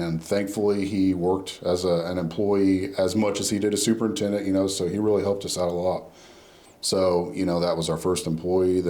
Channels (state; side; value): identical; both; correlation 1.00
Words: thankfully he worked as an employee as much as he did a superintendent, you know, so he really helped us out a lot. So, you know, that was our first employee.